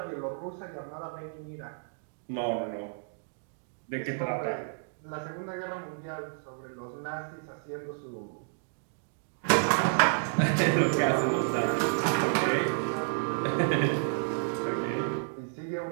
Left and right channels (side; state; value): left; silent; digital silence